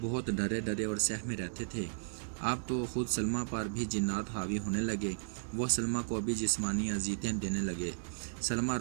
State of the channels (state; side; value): silent; left; digital silence